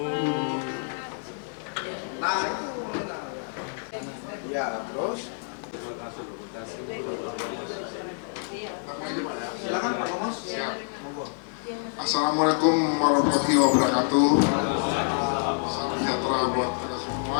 Bapak. Ya, terus silakan Pak Komos. Monggo. Assalamualaikum warahmatullahi wabarakatuh. Salam sejahtera buat kita semua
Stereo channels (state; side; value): silent; right; 60 dB below the other